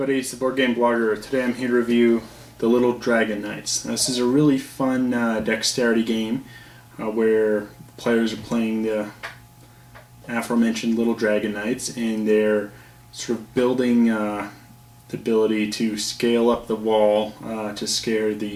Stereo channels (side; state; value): both; identical; correlation 1.00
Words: it's the Board Game Blogger. Today I'm here to review the Little Dragon Knights. Now, this is a really fun dexterity game where players are playing the aforementioned Little Dragon Knights, and they're sort of building the ability to scale up the wall to scare